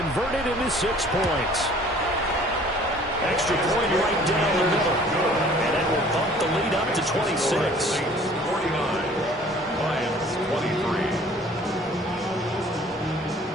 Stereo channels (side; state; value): both; normal; correlation 0.52